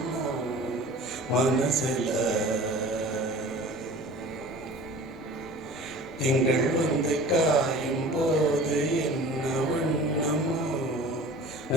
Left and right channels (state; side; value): normal; both; correlation 0.41